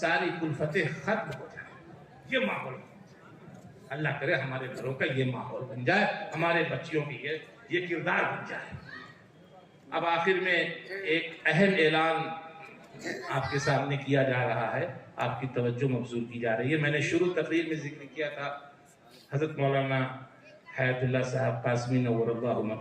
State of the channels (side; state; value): both; identical; correlation 1.00